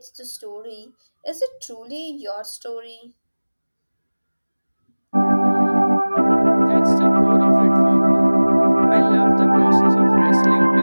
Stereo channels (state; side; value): inverted; both; correlation -1.00